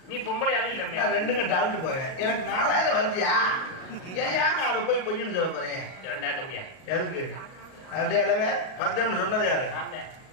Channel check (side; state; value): right; late; 38 ms